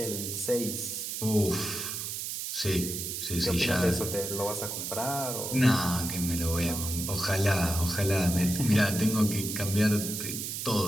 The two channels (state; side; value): noise; right; hiss, 4 dB below the sound